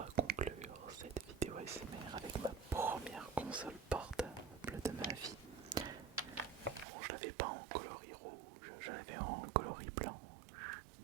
conclure cette vidéo ASMR avec ma première console portable de ma vie. Bon, je l'avais pas en coloris rouge, je l'avais en coloris blanc.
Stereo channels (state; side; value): drops out; left; at 6.9 s